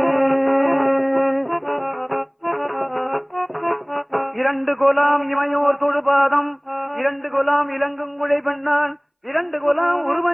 இரண்டு கொலாம் இமையோர் தொழுபாதம், இரண்டு கொலாம் இலங்குங்குழை பெண்ணான், இரண்டு கொலாம்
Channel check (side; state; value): both; identical; correlation 1.00